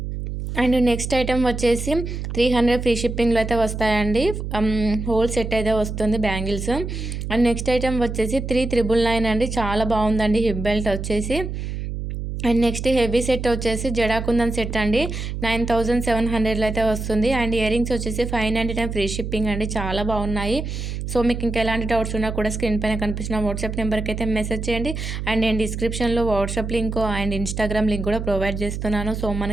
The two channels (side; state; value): right; noise; hum, 5 dB below the sound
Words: అండ్ నెక్స్ట్ ఐటెం వచ్చేసి 300 ఫ్రీ షిప్పింగ్లో అయితే వస్తాయండి. హోల్ సెట్ అయితే వస్తుంది బ్యాంగిల్స్. అండ్ నెక్స్ట్ ఐటెం వచ్చేసి 3999 అండి. చాలా బాగుందండి హిప్ బెల్ట్ వచ్చేసి. అండ్ నెక్స్ట్ హెవీ సెట్ వచ్చేసి జడాకుందన్ సెట్ అండి, 9700లో అయితే వస్తుంది. అండ్ ఇయరింగ్స్ వచ్చేసి 599 ఫ్రీ షిప్పింగ్ అండి. చాలా బాగున్నాయి. సో మీకు ఇంకా ఎలాంటి డౌట్స్ ఉన్నా కూడా స్క్రీన్ పైన కనిపిస్తున్న వాట్సాప్ నెంబర్కి అయితే మెసేజ్ చేయండి. అండ్ నేను డిస్క్రిప్షన్లో WhatsApp link and Instagram link కూడా ప్రొవైడ్ చేస్తున్నాను. సో